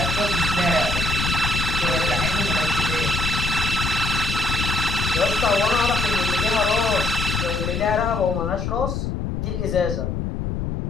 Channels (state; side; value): noise; left; rumble, 2 dB below the sound